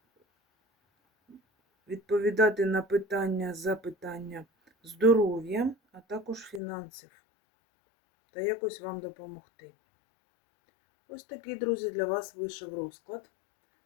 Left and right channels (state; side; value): drops out; right; at 6.6 s